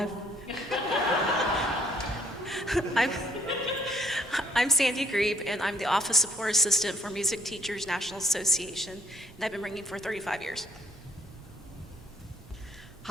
I'm Sandy Grebe, and I'm the Office Support Assistant for Music Teachers National Association, and I've been ringing for 35 years.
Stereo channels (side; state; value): both; normal; correlation 0.64